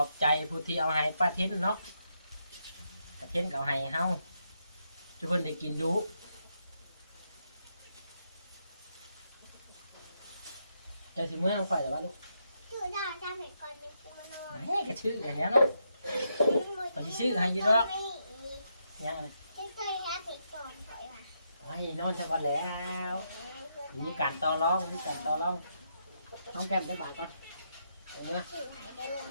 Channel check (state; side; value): inverted; both; correlation -0.80